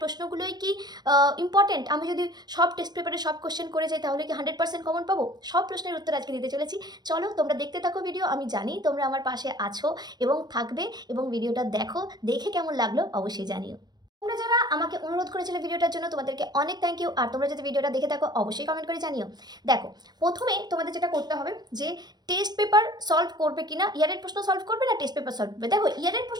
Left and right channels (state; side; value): late; left; 0.20 ms